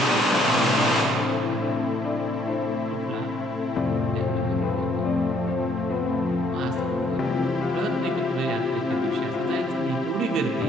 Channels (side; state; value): both; normal; correlation 0.67